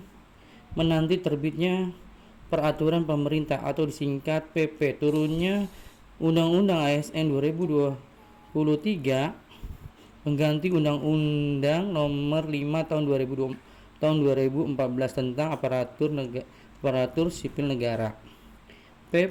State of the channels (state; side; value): identical; both; correlation 1.00